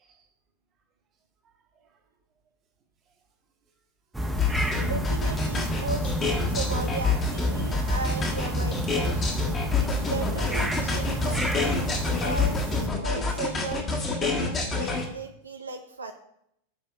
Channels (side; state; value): both; normal; correlation 0.42